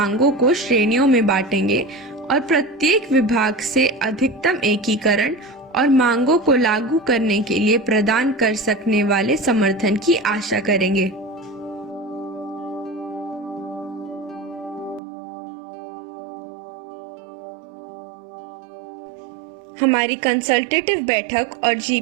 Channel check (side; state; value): left; drops out; at 15.0 s